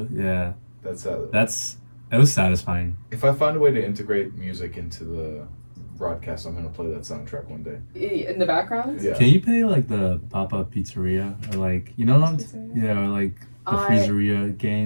Yeah. That's It was satisfying. if I find a way to integrate music into the broadcast, I'm gonna play that soundtrack one day. In the background? Yeah. Can you play like the Papa Pizzeria or like you know what I'm Pizzeria? yeah or like the I Freezeria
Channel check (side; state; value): both; inverted; correlation -1.00